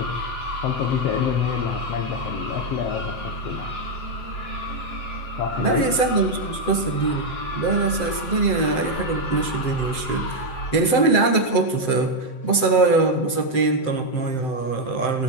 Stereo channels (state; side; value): late; right; 7.8 ms